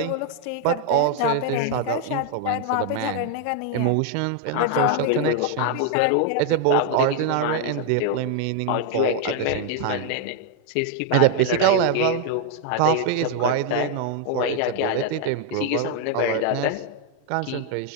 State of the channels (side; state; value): both; different; correlation 0.00